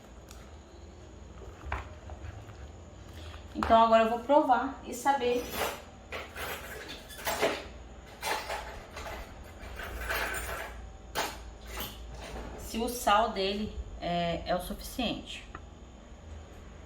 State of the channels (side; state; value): both; identical; correlation 1.00